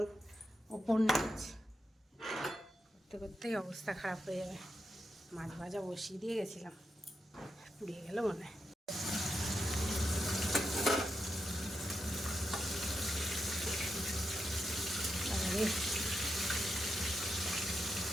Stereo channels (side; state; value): both; normal; correlation 0.86